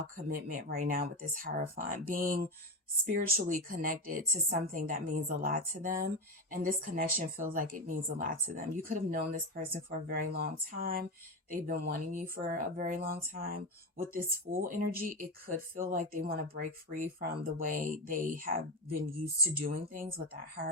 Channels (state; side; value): normal; both; correlation 0.15